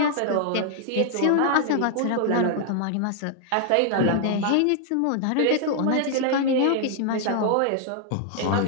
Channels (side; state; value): both; different; correlation 0.00